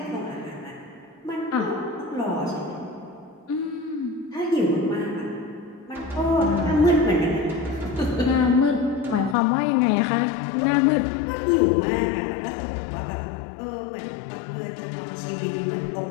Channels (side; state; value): right; drops out; at 9.3 s